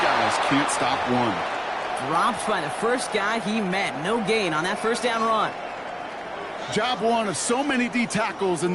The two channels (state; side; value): identical; both; correlation 1.00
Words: can't stop one. Dropped by the first guy he met. No gain on that first down run. Job one of so many D tackles in